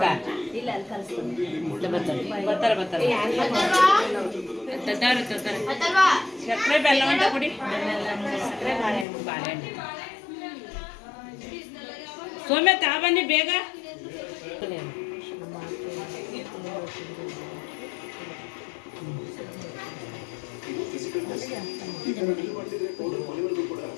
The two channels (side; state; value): right; drops out; at 9.1 s